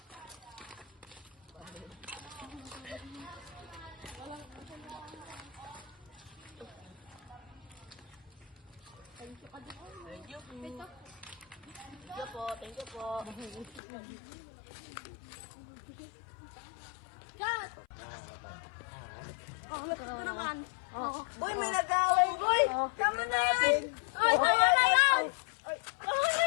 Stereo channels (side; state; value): right; drops out; at 13.8 s